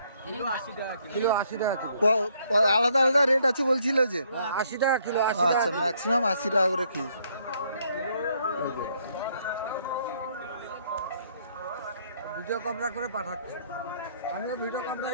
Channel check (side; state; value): both; inverted; correlation -0.68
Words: আলাদা আলাদা রেট আছে বলছিল যে 80 টাকা কিলো। আচ্ছা, ম্যাক্সিমাম 80 টাকা করে কি? ভিডিও ক্যামেরা করে পাঠাচ্ছে, আমিও ভিডিও ক্যামেরা